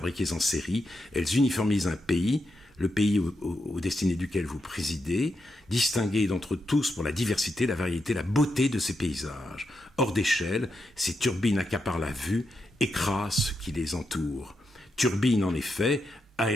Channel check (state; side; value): normal; both; correlation 0.85